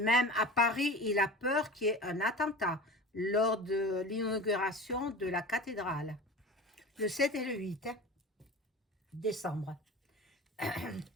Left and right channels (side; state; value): both; normal; correlation 0.34